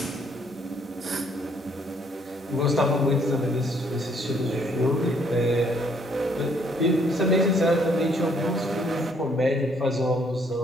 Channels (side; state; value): both; normal; correlation 0.66